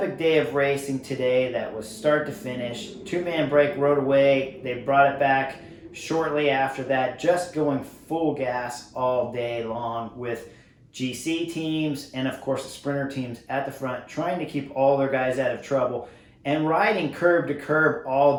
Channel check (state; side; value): identical; both; correlation 1.00